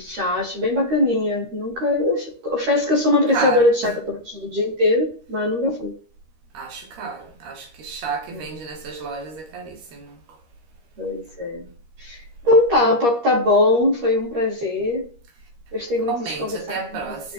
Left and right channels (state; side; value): late; left; 13 ms